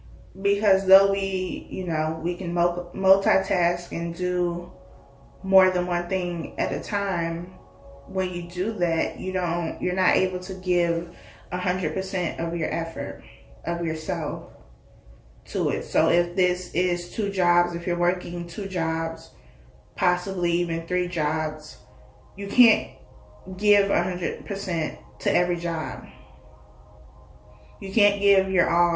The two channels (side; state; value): both; identical; correlation 1.00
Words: Because though we can multitask and do more than one thing at a time, when you do that, you're not able to give 100% of your effort, of yourself to it. So if this is 2 jobs, if you're working 2 jobs, possibly even 3 jobs, you can't give 100% to every job. You can't give your